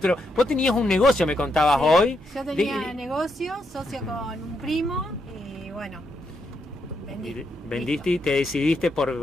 Vos tenías un negocio, me contabas Sí, hoy. Yo De- tenía negocio, socio con un primo y bueno, vendí. vendiste y te decidiste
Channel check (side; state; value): both; normal; correlation 0.80